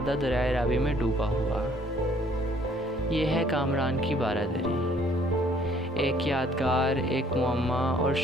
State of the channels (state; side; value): normal; both; correlation 0.61